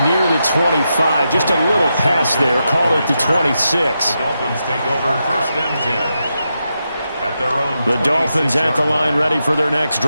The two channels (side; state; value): both; inverted; correlation -0.86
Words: near the 25. Just a little pass there. Call it the 26. The Dolphins take over 1st and 10. The Dolphins at the line, ready for their next